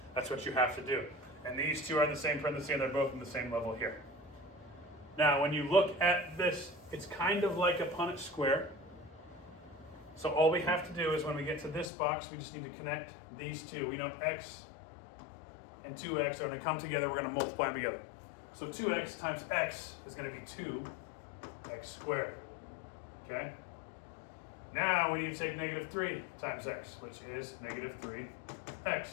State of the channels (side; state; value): right; drops out; at 11.9 s